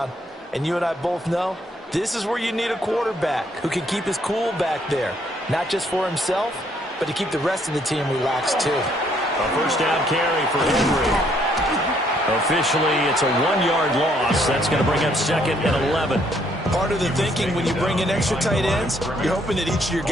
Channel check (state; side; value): normal; both; correlation 0.68